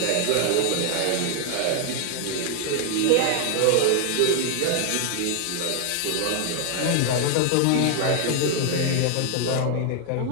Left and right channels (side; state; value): both; different; correlation 0.00